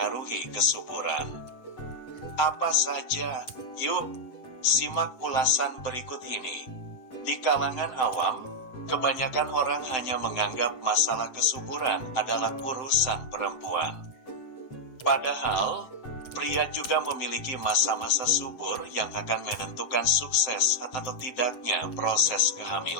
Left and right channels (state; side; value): late; right; 7.9 ms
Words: kesuburan. Apa saja? Yuk, simak ulasan berikut ini. Di kalangan awam, kebanyakan orang hanya menganggap masalah kesuburan adalah urusan perempuan. Padahal, pria juga memiliki masa-masa subur yang akan menentukan sukses atau tidaknya proses